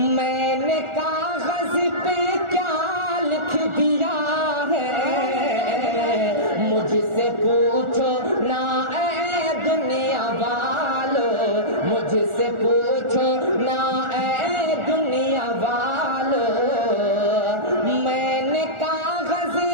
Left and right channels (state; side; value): late; left; 1.4 ms